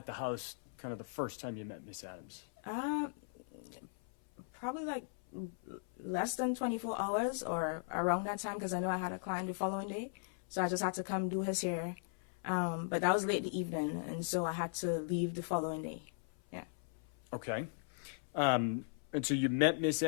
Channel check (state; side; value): silent; right; 52 dB below the other